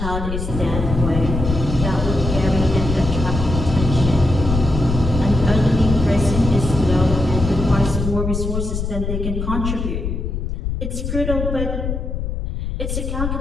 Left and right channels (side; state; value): left; noise; rumble, 3 dB below the sound